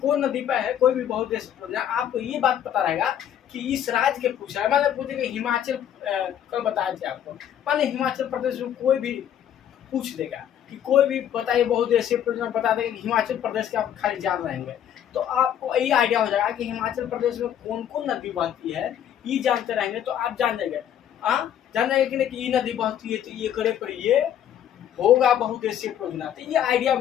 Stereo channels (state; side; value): quieter; right; 10.1 dB